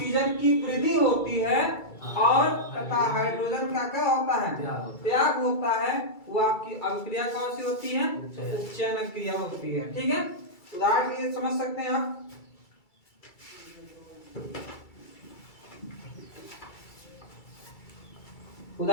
की वृद्धि होती है और तथा हाइड्रोजन का क्या होता है, त्याग होता है, वो आपकी अभिक्रिया कौन सी होती है, उपचयन अभिक्रिया होती है, ठीक है। उदाहरण के लिए समझ सकते हैं आप,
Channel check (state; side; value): late; right; 2.3 ms